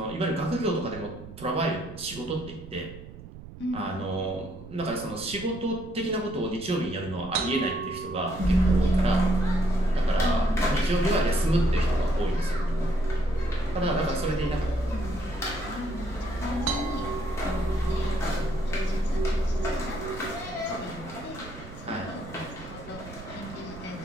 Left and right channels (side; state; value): right; noise; rumble, 15 dB below the sound